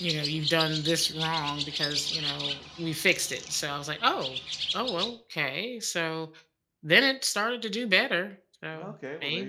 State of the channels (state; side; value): identical; both; correlation 1.00